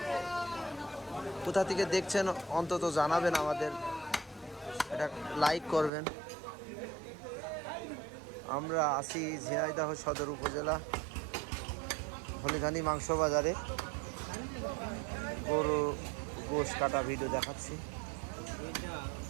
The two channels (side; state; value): left; drops out; at 5.9 s